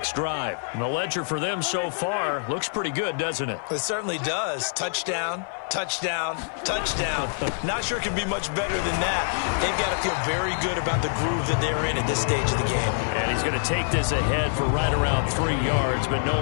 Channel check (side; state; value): right; silent; 56 dB below the other